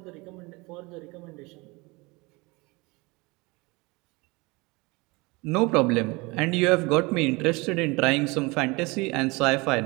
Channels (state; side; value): quieter; left; 25.3 dB